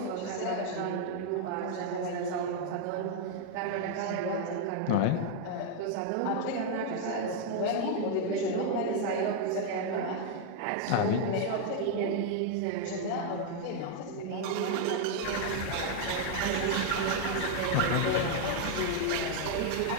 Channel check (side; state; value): both; different; correlation 0.00